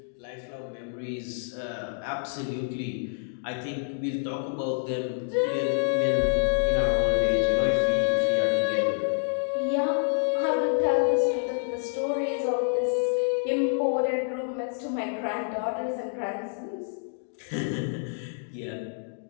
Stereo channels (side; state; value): right; silent; digital silence